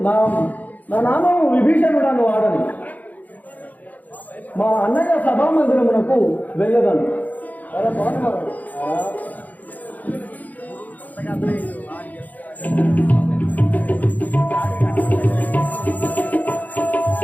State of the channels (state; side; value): late; right; 0.079 ms